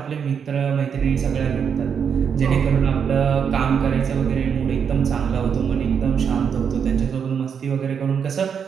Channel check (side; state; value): left; quieter; 7.2 dB